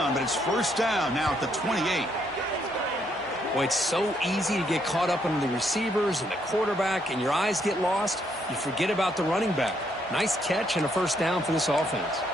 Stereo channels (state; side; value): normal; both; correlation 0.73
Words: but it's first down now at the 28. Boy, it's so easy to get caught up in the receivers and the quarterback, and your eyes get lost. You forget about the running back. Nice catch and a first down for this offense.